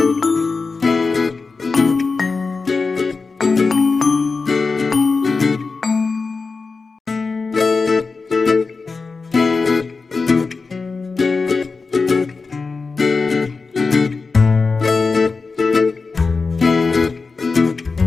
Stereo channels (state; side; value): quieter; right; 4.3 dB